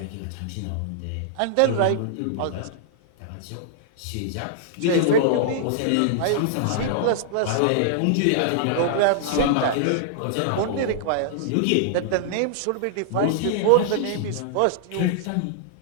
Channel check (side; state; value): both; different; correlation -0.01